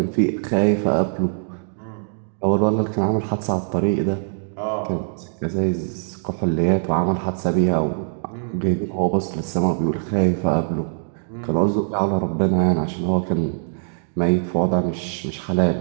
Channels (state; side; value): silent; left; digital silence